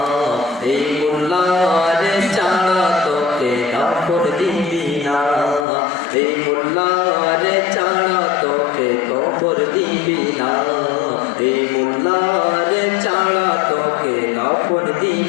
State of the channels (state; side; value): drops out; right; at 5.7 s